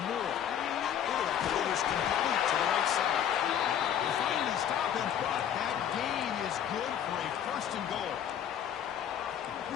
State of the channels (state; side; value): quieter; right; 9.5 dB